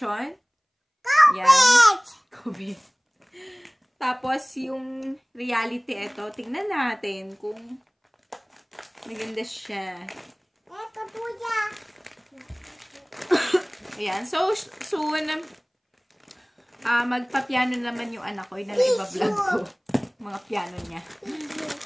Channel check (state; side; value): identical; both; correlation 1.00